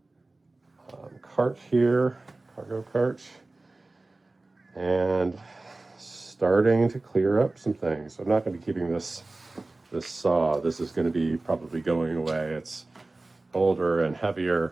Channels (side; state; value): left; quieter; 3.1 dB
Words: cart here, cargo cart, and starting to clear up some things. So I'm not going to be keeping this saw. This is going to be probably going away. It's older and